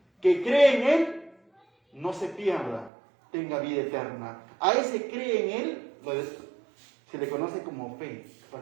que cree en Él no se pierda, tenga vida eterna. A ese cree en Él se le conoce como fe.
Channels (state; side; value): drops out; left; at 2.9 s